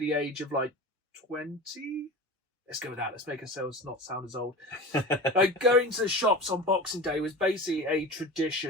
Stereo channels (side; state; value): both; normal; correlation 0.31